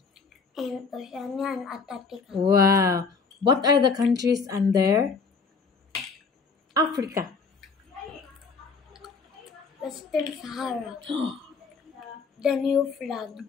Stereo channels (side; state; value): right; quieter; 4.9 dB